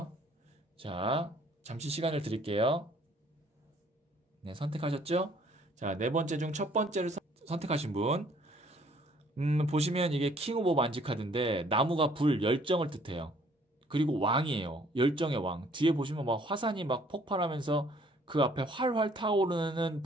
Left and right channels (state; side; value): normal; both; correlation 0.60